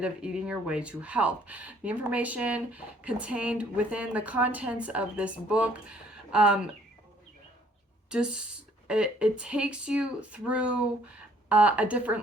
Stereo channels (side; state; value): both; normal; correlation 0.61